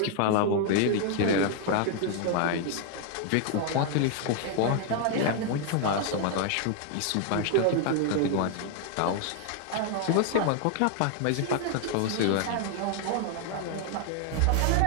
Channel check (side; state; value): both; different; correlation 0.00